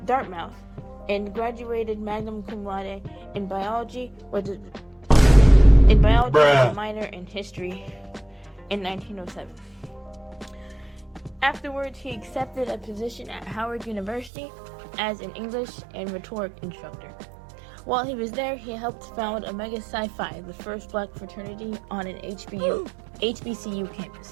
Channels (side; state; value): left; drops out; at 14.3 s